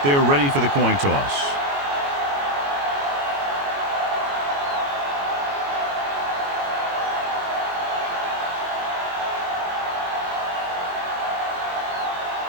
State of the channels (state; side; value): late; left; 21 ms